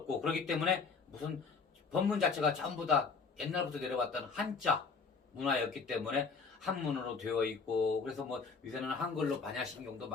그렇기 때문에 무슨 법문 자체가 전부 다 옛날부터 내려왔던 한자 문화였기 때문에 한문으로 되어 있고, 그래서 뭐 요새는 한글로 반야신경도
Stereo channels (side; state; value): right; quieter; 4.9 dB